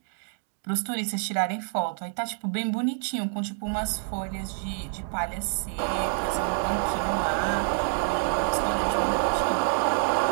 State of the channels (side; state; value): left; silent; 60 dB below the other